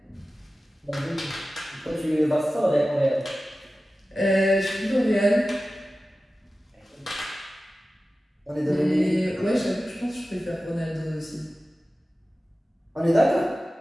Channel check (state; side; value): normal; both; correlation 0.95